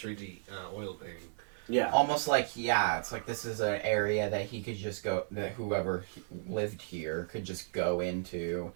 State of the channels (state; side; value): silent; left; digital silence